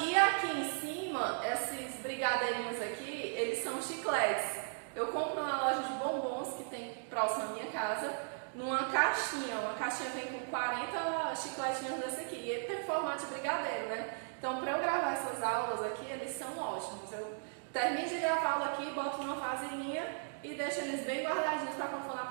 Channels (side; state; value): left; silent; digital silence